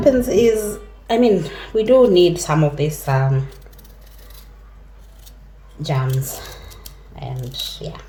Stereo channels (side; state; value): both; identical; correlation 1.00